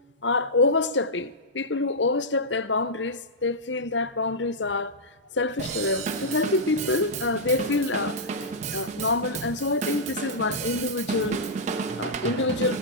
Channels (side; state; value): both; normal; correlation -0.10